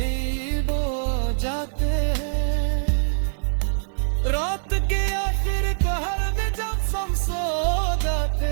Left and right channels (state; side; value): silent; left; 63 dB below the other